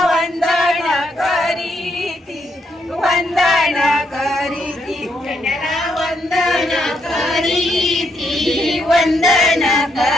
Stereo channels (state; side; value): normal; both; correlation 0.77